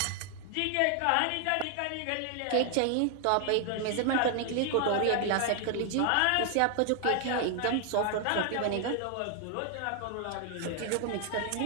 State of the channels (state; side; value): different; both; correlation 0.00